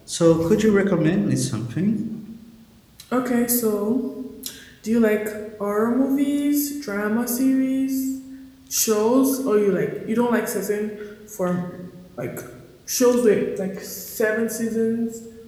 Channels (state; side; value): identical; both; correlation 1.00